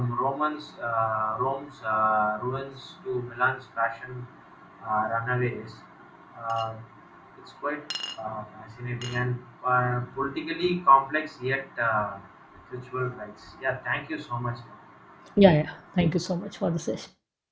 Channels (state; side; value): identical; both; correlation 1.00